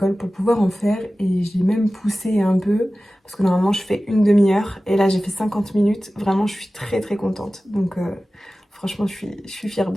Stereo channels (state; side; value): normal; both; correlation 0.96